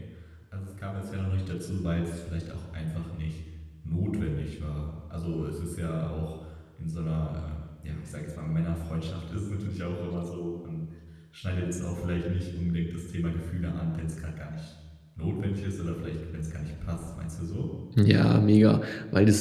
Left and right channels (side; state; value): both; identical; correlation 1.00